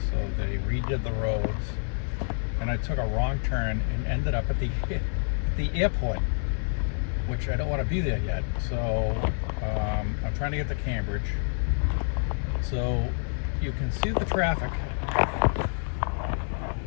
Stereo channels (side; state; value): right; silent; 56 dB below the other